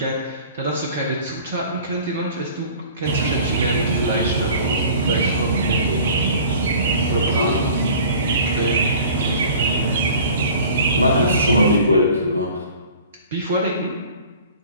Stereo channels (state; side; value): inverted; both; correlation -0.46